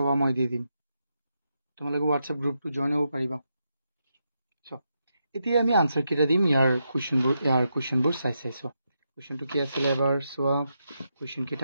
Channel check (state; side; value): inverted; both; correlation -0.84